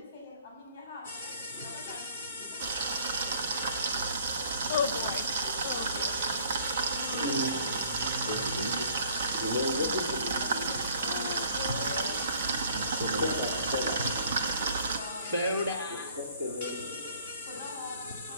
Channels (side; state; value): both; inverted; correlation -0.56